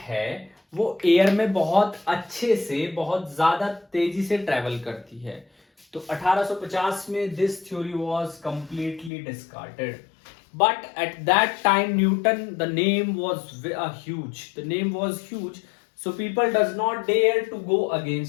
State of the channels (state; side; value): drops out; right; at 9.1 s